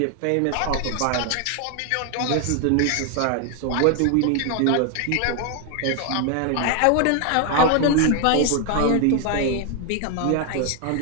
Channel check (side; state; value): both; different; correlation 0.01